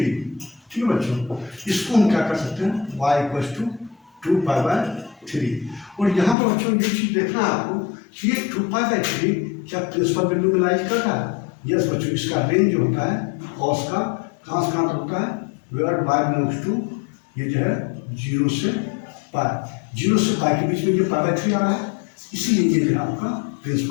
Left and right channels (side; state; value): right; drops out; at 6.4 s